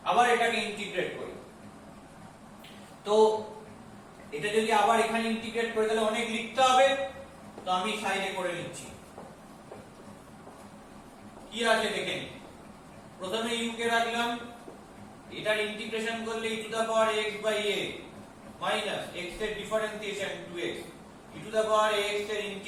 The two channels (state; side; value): identical; both; correlation 1.00